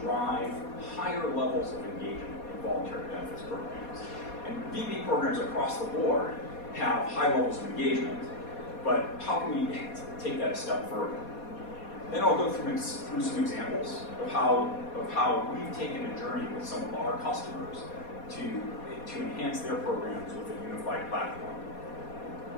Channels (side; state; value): right; late; 4.2 ms